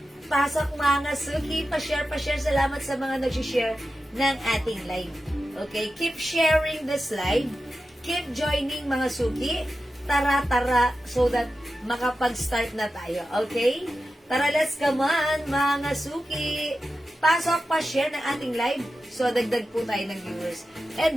Pasok mga suki. Pa-share. Salamat sa mga nag-share ng ating live. Okay, keep sharing this live. Keep joining mga suki. Tara, so that makapag-start na tayo. Okay? Tara, let's come on, mga suki. Pasok, pa-share ng ating live. So, dagdag po tayo ng viewers.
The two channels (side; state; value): both; normal; correlation 0.92